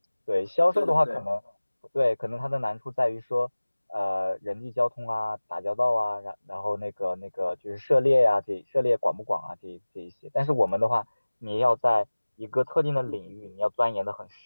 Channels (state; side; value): inverted; both; correlation -1.00